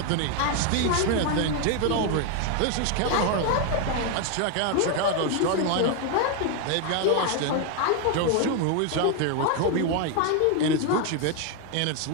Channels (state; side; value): different; both; correlation 0.01